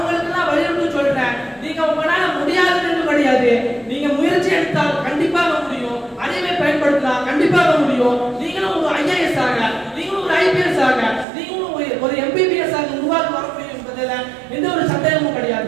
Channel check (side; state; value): left; drops out; at 11.2 s